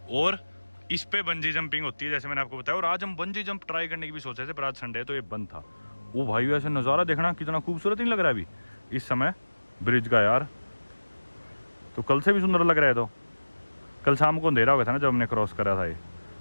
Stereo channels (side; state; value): both; inverted; correlation -1.00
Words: और इस पे बंजी जंपिंग होती है जैसे मैंने आपको बताया। और आज हम बंजी जंप ट्राई करने की भी सोचे थे, पर आज संडे है तो ये बंद था। वो भाई ऐसे नज़ारा देखना कितना खूबसूरत नहीं लग रहा है अभी इस समय ब्रिज का यार। तो कल से भी सुंदर लग रहा है। तो कल शाम को अंधेरा हो गया था ना जब हमने क्रॉस करा था ये।